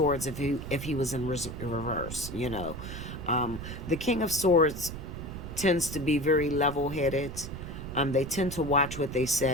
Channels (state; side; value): noise; right; rumble, 9 dB below the sound